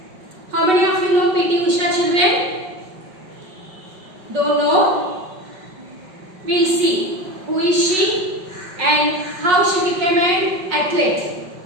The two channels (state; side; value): late; left; 5.4 ms